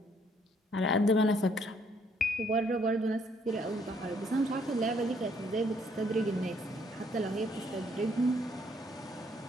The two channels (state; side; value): normal; both; correlation 0.67